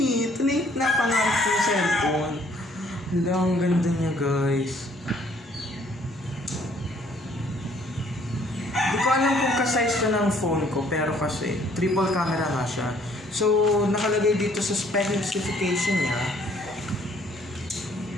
Ito na yung napangarap ko yung cellphone. Hala, ang ganda niya guys. Hindi ko alam kung ka-size to ng phone ko, pero kasi triple camera nga siya. So, nakalagay dito sa specification niya.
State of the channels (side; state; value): both; normal; correlation 0.62